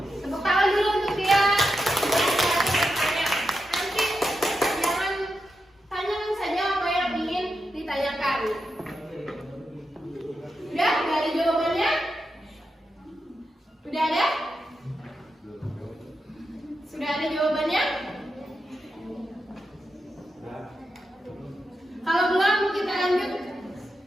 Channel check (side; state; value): both; normal; correlation 0.87